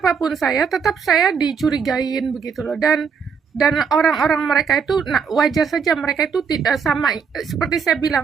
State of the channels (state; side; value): quieter; left; 6.2 dB